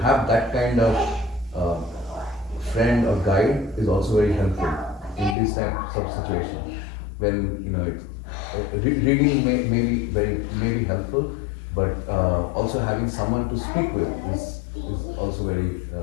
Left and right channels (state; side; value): drops out; right; at 5.4 s